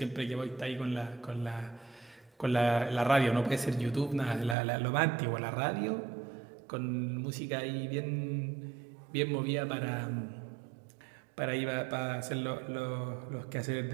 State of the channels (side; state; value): left; drops out; at 4.5 s